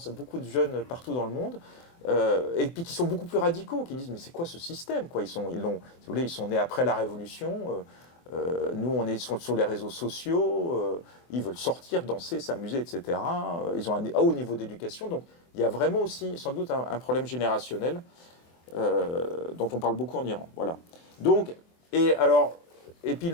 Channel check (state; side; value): late; right; 24 ms